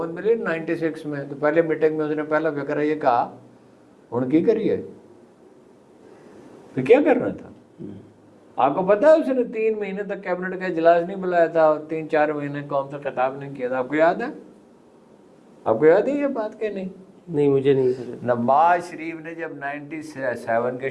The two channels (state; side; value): identical; both; correlation 1.00